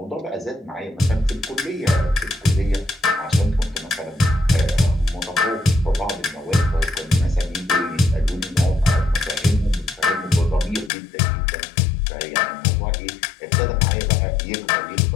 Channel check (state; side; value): drops out; right; at 10.9 s